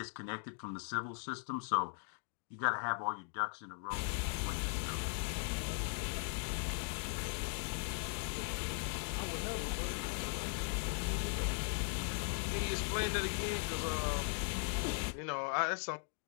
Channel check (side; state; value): right; silent; 52 dB below the other